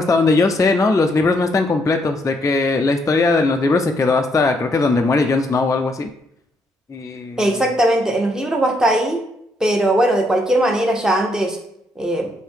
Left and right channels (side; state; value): both; normal; correlation 0.74